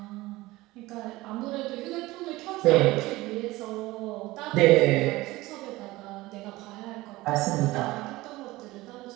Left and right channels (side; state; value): left; quieter; 19.2 dB